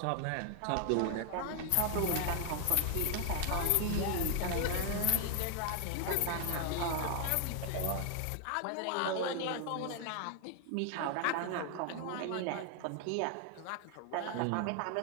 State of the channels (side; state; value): both; different; correlation 0.00